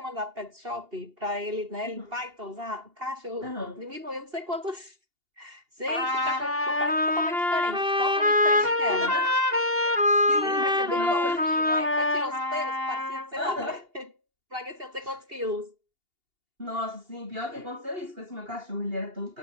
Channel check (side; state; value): left; late; 2.8 ms